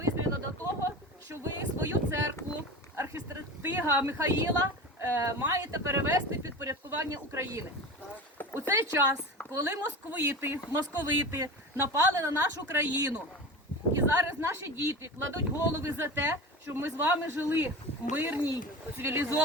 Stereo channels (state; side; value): normal; both; correlation 0.29